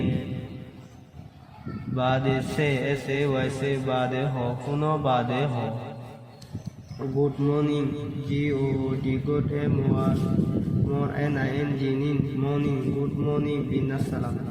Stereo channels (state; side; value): identical; both; correlation 1.00